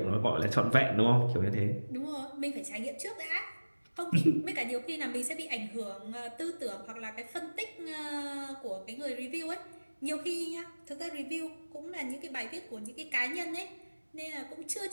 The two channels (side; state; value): both; inverted; correlation -1.00